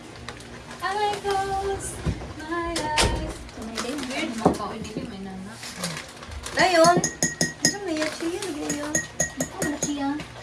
I close my eyes. Weird mo ka. Hindi ko may nana. Ngayon, ano na yan? Chia, lagyan yun. Ano na siya?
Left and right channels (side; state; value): both; identical; correlation 1.00